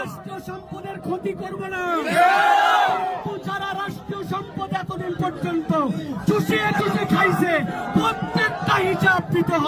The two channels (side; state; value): both; identical; correlation 1.00